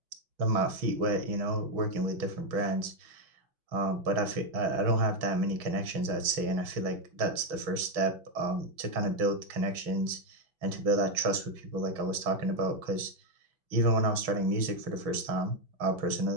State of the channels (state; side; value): late; left; 6.2 ms